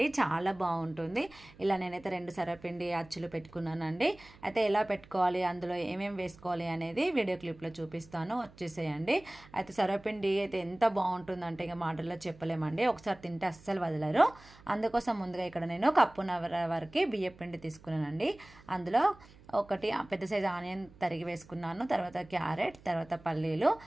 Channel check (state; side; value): noise; right; hum, 23 dB below the sound